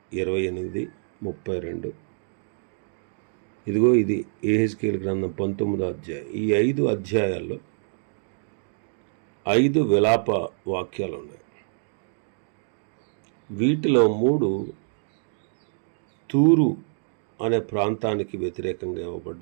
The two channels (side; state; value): left; silent; digital silence